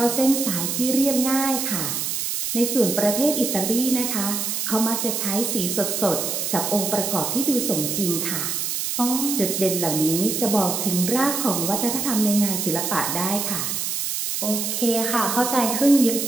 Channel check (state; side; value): noise; right; hiss, 1 dB below the sound